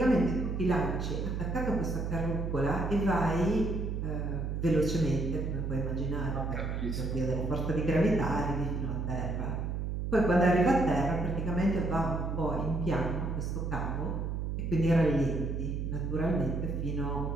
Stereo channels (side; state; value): right; noise; hum, 2 dB below the sound